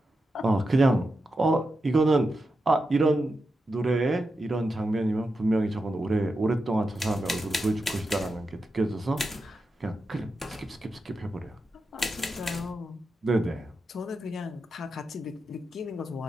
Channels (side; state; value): both; normal; correlation 0.88